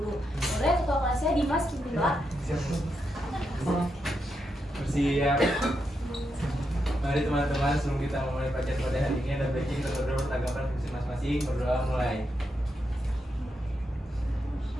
Boleh ketua kelasnya Dimas berdoa. Bersiap. Mari teman-teman, sebelum kita memulai pelajaran pada hari ini, ada baiknya kita berdoa bertanggapan fungsi masing-masing. Berdoa mulai.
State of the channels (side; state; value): both; normal; correlation 0.84